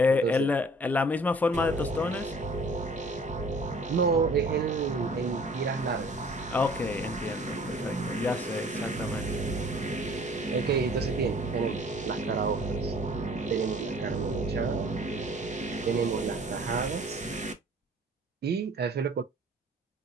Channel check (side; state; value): both; normal; correlation 0.52